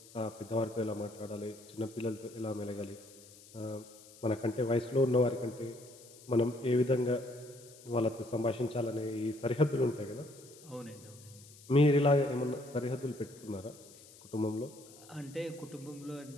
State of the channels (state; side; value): noise; left; hiss, 21 dB below the sound